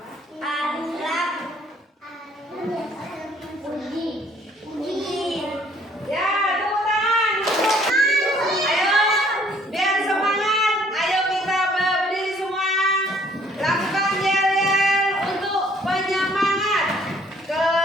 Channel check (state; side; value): normal; both; correlation 0.60